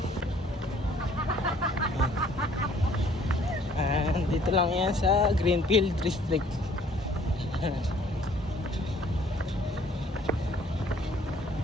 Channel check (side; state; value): both; normal; correlation 0.58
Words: Dito lang yan sa Greenfield District.